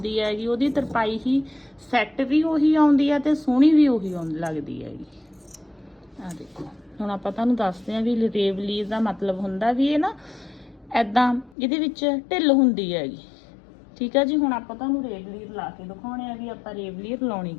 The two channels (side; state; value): right; drops out; at 11.6 s